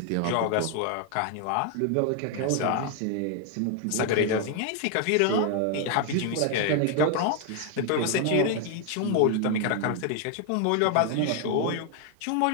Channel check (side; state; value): both; different; correlation 0.01